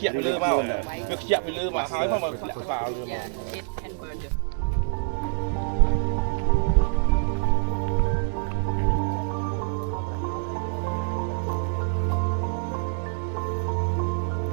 ជាក់ពីលើមកវាខ្ជាក់ពីលើមកហើយមកធ្លាក់ក្បាលវាមក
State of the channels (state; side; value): silent; left; digital silence